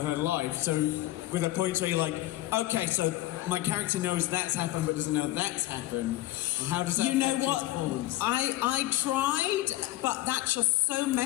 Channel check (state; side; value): quieter; right; 16.3 dB